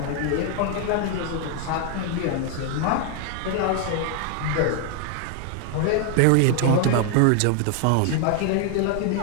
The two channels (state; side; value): different; both; correlation 0.00